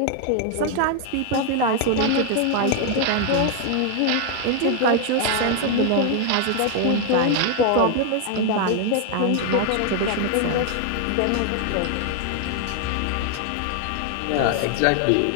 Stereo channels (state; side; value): different; both; correlation 0.00